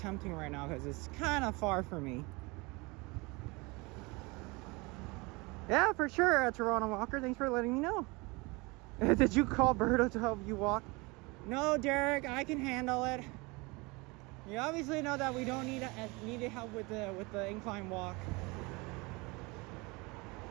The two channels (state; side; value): quieter; left; 26.0 dB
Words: right now, because it's kind of far for me. Yeah, for sure, Toronto Walker. Thanks for letting me know. Did you call Berto to help you walk? No, Derek, I can handle it. You obviously know that we don't need help with the incline walk.